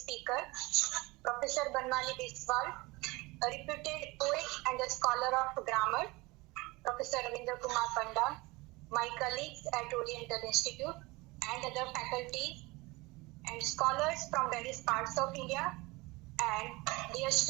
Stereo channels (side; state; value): left; quieter; 23.2 dB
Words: speaker, Professor Banmali Biswal, a reputed poet and a scholar of grammar, Professor Ravindra Kumar Panda, my colleagues at Oriental Institute and other faculty and scholars from various parts of India, and dear